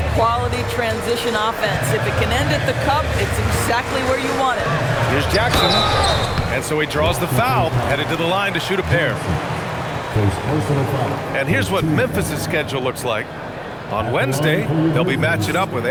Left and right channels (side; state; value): both; identical; correlation 1.00